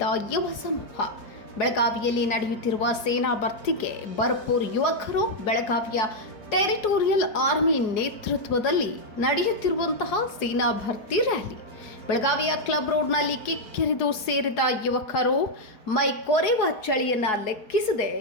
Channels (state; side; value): late; right; 4.8 ms